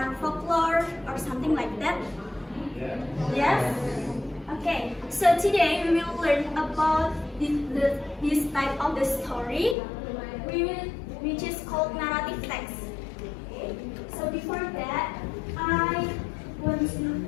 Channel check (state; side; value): drops out; right; at 9.8 s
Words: folklore or something like that? Yes? Okay, so today we will learn about this type of the story, which is called narrative text. Okay. So before that,